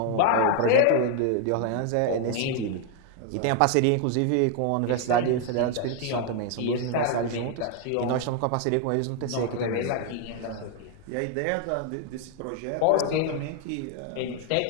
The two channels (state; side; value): different; both; correlation 0.00